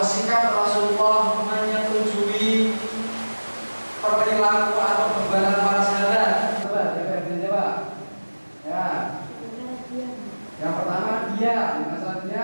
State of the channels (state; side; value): inverted; both; correlation -1.00